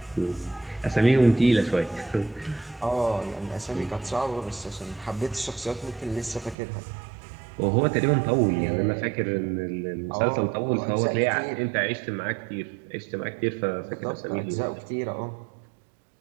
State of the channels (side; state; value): left; drops out; at 6.6 s